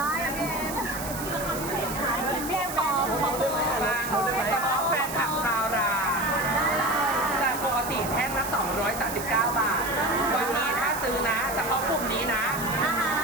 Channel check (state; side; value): noise; right; hiss, 9 dB below the sound